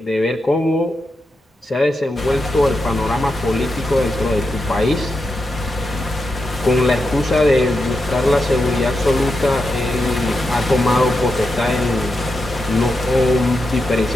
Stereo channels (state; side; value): normal; both; correlation 0.87